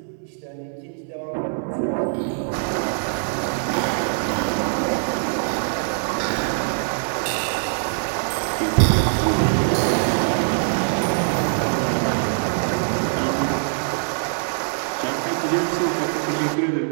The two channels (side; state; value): left; silent; 63 dB below the other